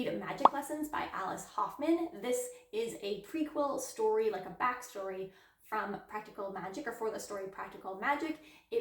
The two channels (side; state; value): both; identical; correlation 1.00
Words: Magic Lessons by Alice Hoffman. This is a prequel story, like a backstory from Practical Magic, or for the story Practical Magic.